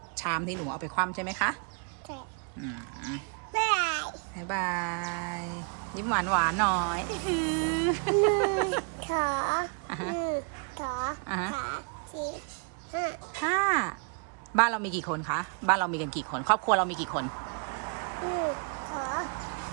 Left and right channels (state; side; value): quieter; left; 39.7 dB